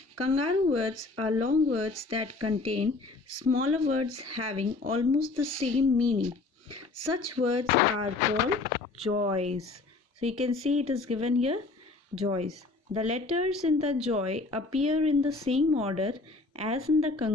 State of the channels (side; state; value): right; quieter; 3.6 dB